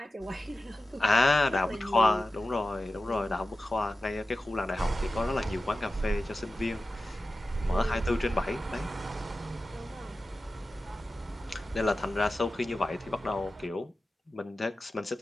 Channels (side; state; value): both; normal; correlation 0.93